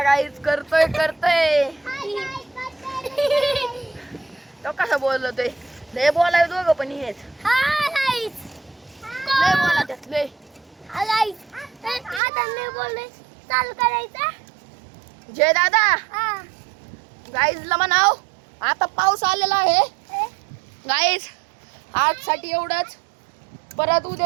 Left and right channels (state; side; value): drops out; left; at 12.2 s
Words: गाईज करतोय तो कसं बोलतोय लय बोलाय दोघं पण हेच लय बोला त्यात लय चालू करायचा जय दादा गाईजला म्हणाव आता पाऊस आलेला आहे गाईज आजसाठी एवढंच परत